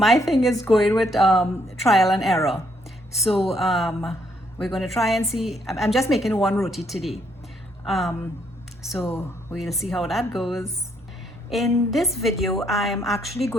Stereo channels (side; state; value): both; normal; correlation 0.71